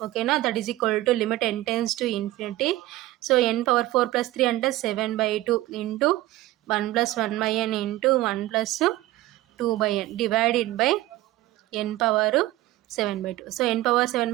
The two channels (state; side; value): quieter; left; 16.8 dB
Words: ఓకేనా. That is equal to limit n tends to infinity. So n^4 + 3 అంటే 7/2 into 1 + 1/n into 1 + 2/n divided by n^7/2. So